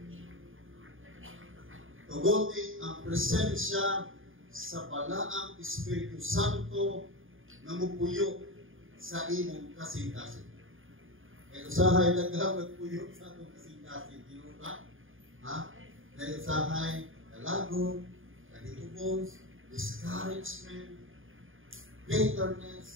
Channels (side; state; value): left; late; 0.59 ms